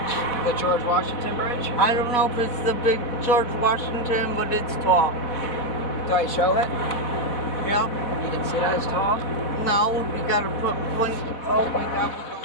The George Washington Bridge? I don't know if it's the big George Washington, but it's tall. Do I show it? Yeah. You can see that it's tall? No, we gotta put blink. Oh my God.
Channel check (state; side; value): late; right; 4.1 ms